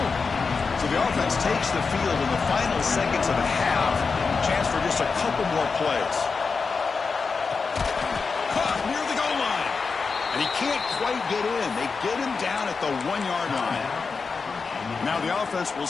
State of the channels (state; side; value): quieter; right; 4.9 dB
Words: So the offense takes the field in the final seconds of the half. Chance for just a couple more plays. Near the goal line. And he can't quite get in. They get him down at the 1-yard line. Now the offense will